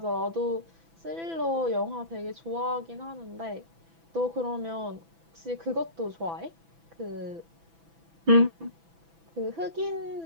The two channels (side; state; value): left; late; 6.0 ms